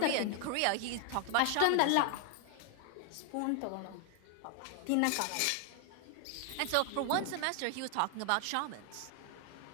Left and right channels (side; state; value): both; different; correlation 0.00